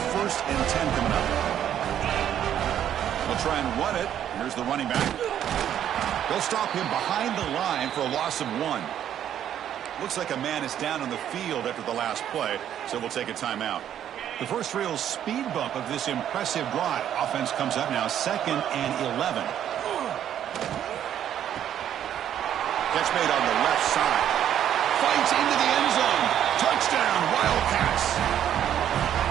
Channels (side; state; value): left; quieter; 10.3 dB